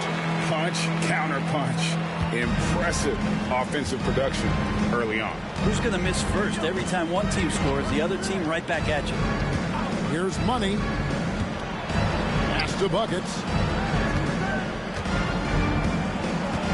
Punch, counter punch. Impressive offensive production early on. Who's going to miss first? Every time one team scores, the other team right back at you. Here's Money. Pass to Buckets.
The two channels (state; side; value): identical; both; correlation 1.00